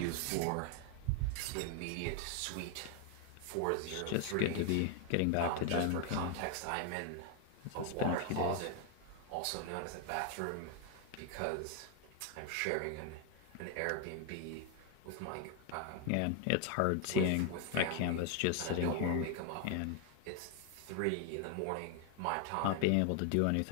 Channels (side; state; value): both; different; correlation 0.01